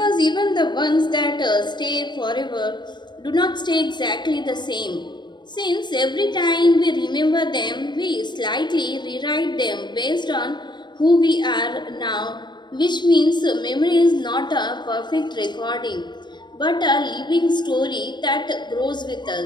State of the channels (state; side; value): late; right; 0.22 ms